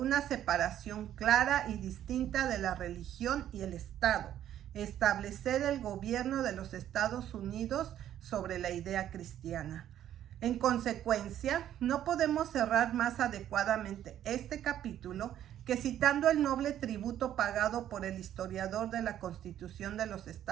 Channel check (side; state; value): left; quieter; 11.3 dB